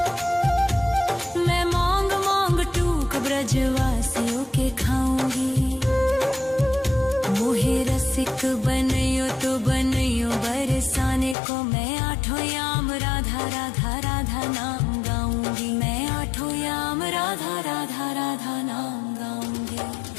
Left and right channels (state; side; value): drops out; right; at 11.4 s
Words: मैं मांग मांग टूक ब्रजवासियों के खाऊंगी। मोहे रसिक बनियो तो बनियो बरसाने को, मैं आठों याम राधा राधा राधा नाम गाऊंगी, मैं आठों याम राधा राधा राधा नाम गाऊंगी।